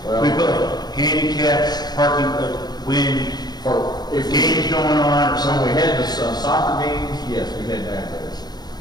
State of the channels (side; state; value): right; late; 0.20 ms